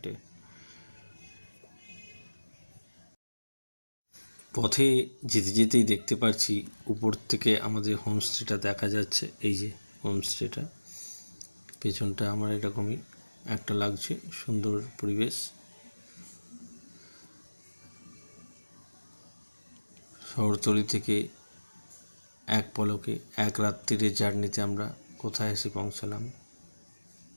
পথে যেতে যেতেই দেখতে পাচ্ছি উপর থেকে আমাদের হোমস্টেটা দেখা যাচ্ছে। এই যে হোমস্টেটা, পেছনটা আমার এরকমই একটা লাগছে, সুন্দর পরিবেশ। শহরতলি থেকে এক পলকে এক রাত্রির জার্নিতে আমরা কোথায় এসে পৌঁছালাম।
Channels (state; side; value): inverted; both; correlation -1.00